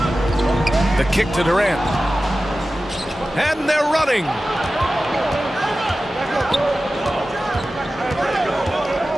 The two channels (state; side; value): normal; both; correlation 0.95